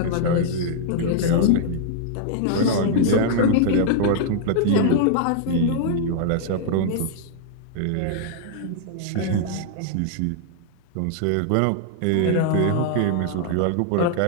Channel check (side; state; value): both; different; correlation -0.01